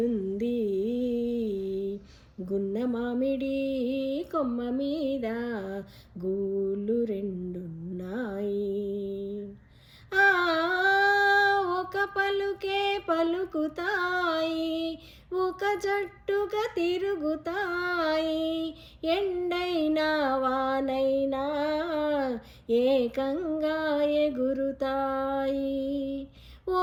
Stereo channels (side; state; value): both; identical; correlation 1.00